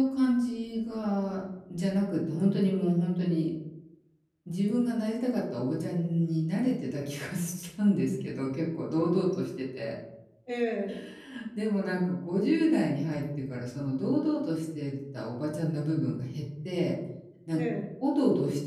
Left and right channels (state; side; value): identical; both; correlation 1.00